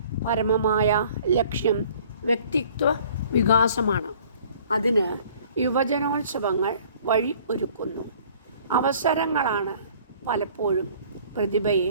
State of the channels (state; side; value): inverted; both; correlation -0.53